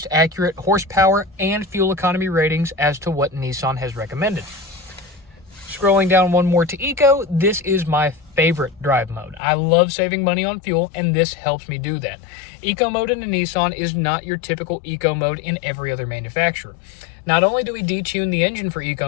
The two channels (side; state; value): right; drops out; at 9.4 s